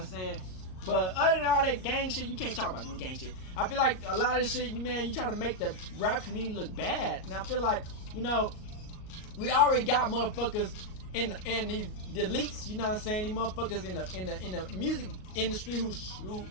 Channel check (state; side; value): late; right; 38 ms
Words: saying? But other than all that gang shit, you can't talk about no gang shit. I feel like a lot of this shit, man, you try to make the rap community look bad. And I feel like, you know, we already got motherfuckers in these elites, you know what I'm saying? These motherfuckers in the music industry who